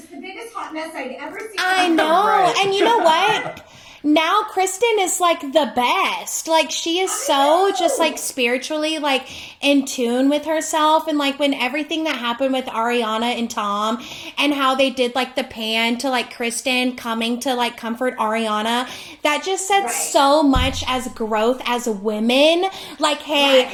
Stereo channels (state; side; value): identical; both; correlation 1.00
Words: the biggest hot mess I'd ever seen. I know. Right. And you know what? Now Kristen is like the best. Like she is so just like spiritually like in tune with herself, and like when everything that happened with Ariana and Tom and how they did like the pan to like Kristen coming to like comfort Ariana, that just said so much as growth as women. Like, hey,